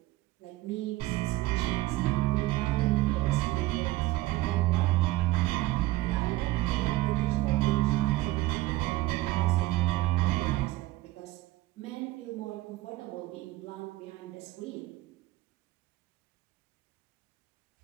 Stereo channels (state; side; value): quieter; left; 17.7 dB